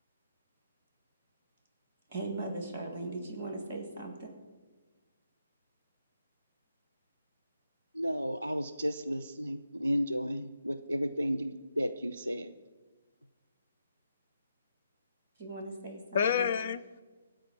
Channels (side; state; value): both; inverted; correlation -0.81